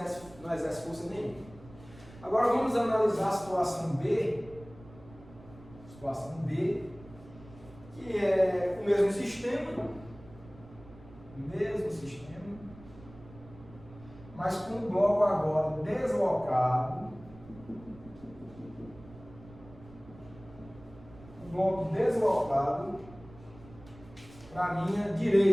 força nenhuma. Agora vamos analisar a situação B. Situação B, que é o mesmo sistema, mas com o bloco agora deslocado. O bloco deslocado para a minha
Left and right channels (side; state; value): right; noise; rumble, 20 dB below the sound